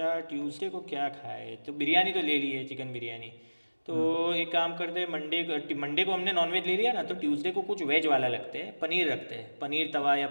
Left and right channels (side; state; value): both; inverted; correlation -1.00